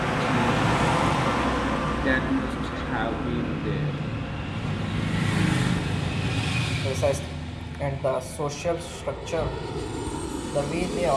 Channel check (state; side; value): identical; both; correlation 1.00